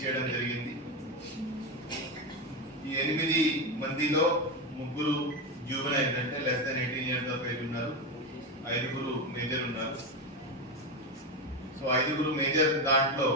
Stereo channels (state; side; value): normal; both; correlation 0.14